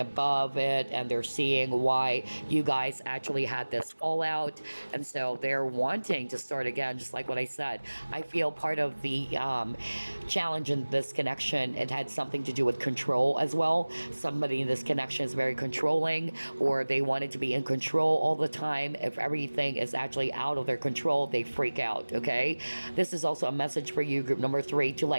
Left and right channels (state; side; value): inverted; both; correlation -1.00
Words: it and they're seeing why you guys actually had this fallout. And so they're wanting to start again, just like what I said. I feel part of the challenge in this connection, it had something to do with control as well. Somebody in this connection is very controlling, or they wanted to be in control all the time. If everything is actually out of their control, they freak out, okay? This is also a message for you, group number 3, to